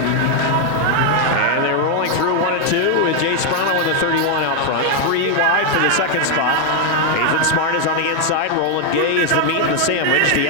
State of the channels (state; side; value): different; both; correlation 0.01